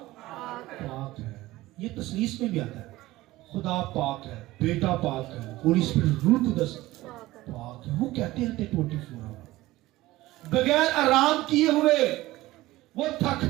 पाक है। ये तस्लीस में भी आता है, खुदा पाक है, बेटा पाक है, होली स्पिरिट रूह कुदस पाक है। वो कहते रहते 24 आवर बगैर आराम किए हुए, वो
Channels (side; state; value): left; quieter; 17.7 dB